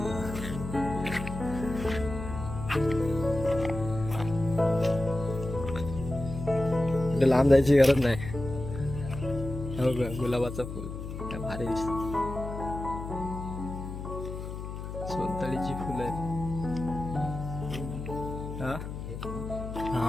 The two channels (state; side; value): noise; left; hum, 7 dB below the sound